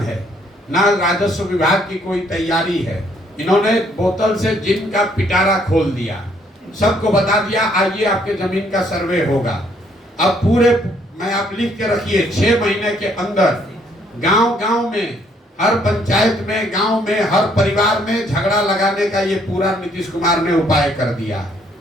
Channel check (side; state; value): both; normal; correlation 0.67